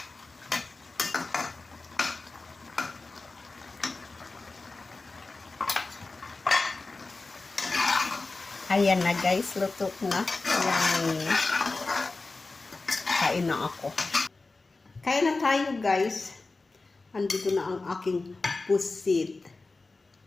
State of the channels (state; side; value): quieter; right; 3.6 dB